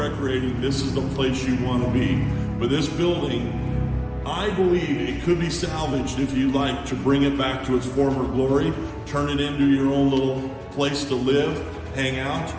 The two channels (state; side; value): identical; both; correlation 1.00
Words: this is the place you want to be. But this building, I believe it could be salvaged if you like to bring it back to its former glory, turn it into your own little place to live, hang out,